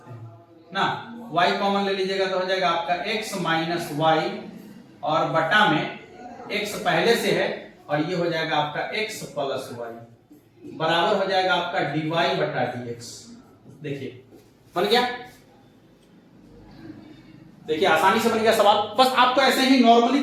हैं ना, y कॉमन ले लीजिएगा तो हो जाएगा आपका x माइनस y और बटा में x पहले से है और ये हो जाएगा आपका x प्लस y बराबर हो जाएगा आपका dy बटा dx। देखिए बन गया, देखिए आसानी से बन गया सवाल। बस आपको ऐसे ही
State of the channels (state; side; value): identical; both; correlation 1.00